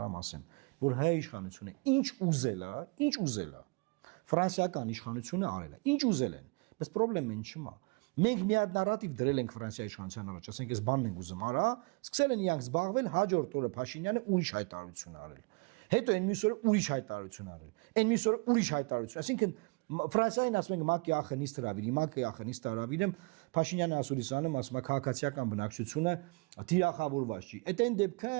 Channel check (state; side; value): quieter; left; 29.2 dB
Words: ասեմ, որ հայ իշխանությունը ինչ ուզել է, ֆրանսիական իշխանությունը արել է, ինչ ուզել են, բայց խնդրեմն ինչ չմա։ Մենք մի հատ նարատիվ դրել ենք Ֆրանսիայի իշխանության առաջ, ասենք այս բանն ենք ուզում արա, սկսել են իրանք զբաղվել, հաջորդ օրը Փաշինյանը ուրիշ հայտարարություն արել։ Հետո այն մյուս օրը ուրիշ հայտարարություն արել։ Այն մյուս օրը ուրիշ հայտարարություն, այսինքն Ֆրանսիային ասում ենք ՄԱԿ-ի ԱԽ-նից հրավիրի, ՄԱԿ-ի ԱԽ-նից հրավիրեմ, Փաշինյանը ասուրիսանում ասում է քաղաքացիական բնակչությունը թիրախավորված չի։ Այդ